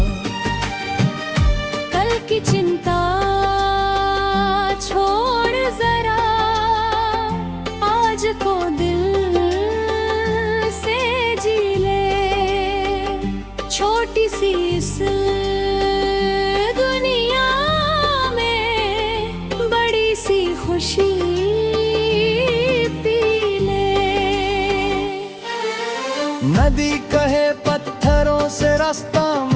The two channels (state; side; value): identical; both; correlation 1.00